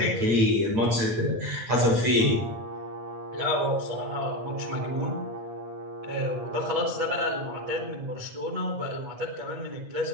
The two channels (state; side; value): late; left; 8.9 ms